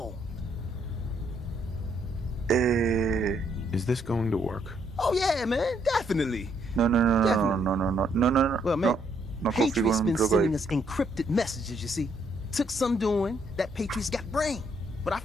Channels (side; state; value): both; normal; correlation 0.71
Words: Is this going to work? Oh, yeah, man, definitely. No. Well, man, No confío Patriot's en un been drogo sending ahí. us encrypted messages, you see. Took some doing, that Patriot's got brain. But I